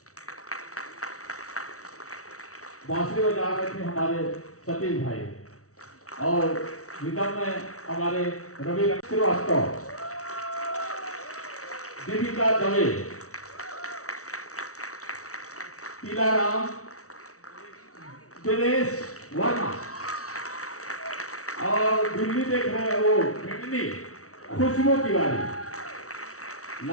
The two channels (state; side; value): late; right; 0.64 ms